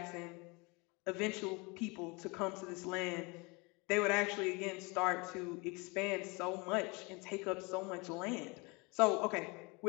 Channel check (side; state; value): right; quieter; 27.8 dB